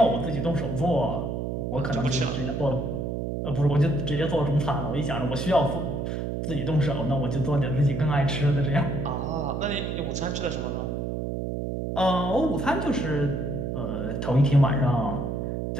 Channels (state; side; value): noise; right; hum, 3 dB below the sound